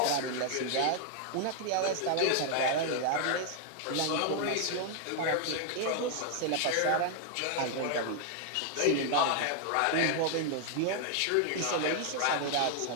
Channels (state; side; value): different; both; correlation 0.00